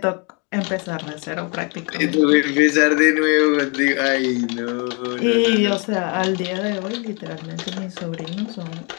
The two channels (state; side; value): quieter; right; 33.4 dB